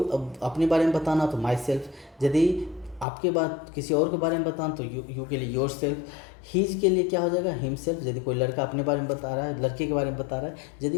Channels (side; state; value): right; drops out; at 3.1 s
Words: अपने बारे में बताना तो माई सेल्फ, यदि आपके बाद किसी और के बारे में बताना तो यू के लिए योर सेल्फ, हीज के लिए क्या हो जाएगा, हिम सेल्फ। यदि कोई लड़का अपने बारे में बता रहा है, लड़के के बारे में बता रहा है,